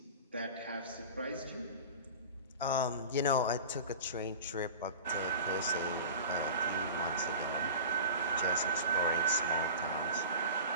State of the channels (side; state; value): both; inverted; correlation -0.36